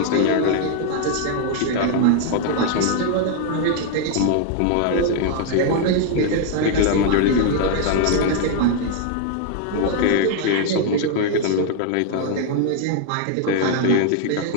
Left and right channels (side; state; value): both; different; correlation 0.00